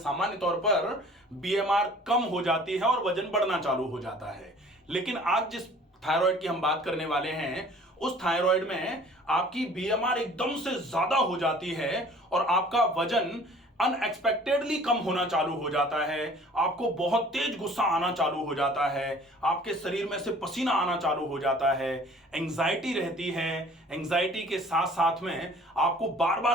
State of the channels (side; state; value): both; normal; correlation 0.50